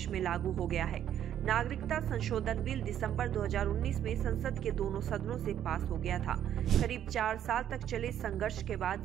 में लागू हो गया है। नागरिकता संशोधन बिल दिसंबर 2019 में संसद के दोनों सदनों से पास हो गया था। करीब 4 साल तक चले संघर्ष के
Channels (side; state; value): left; quieter; 10.5 dB